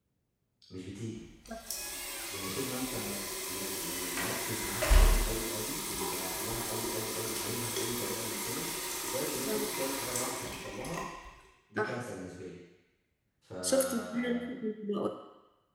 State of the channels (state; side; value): identical; both; correlation 1.00